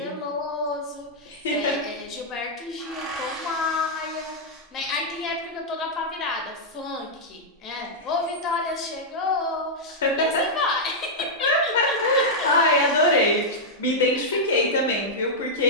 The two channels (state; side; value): normal; both; correlation -0.05